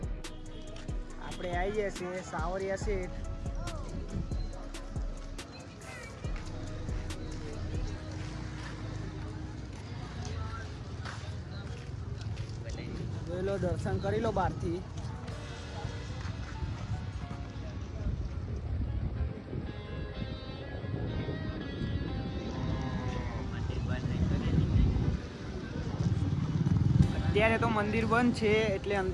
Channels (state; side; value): identical; both; correlation 1.00